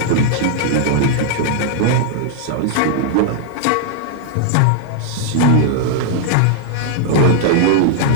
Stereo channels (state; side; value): different; both; correlation 0.00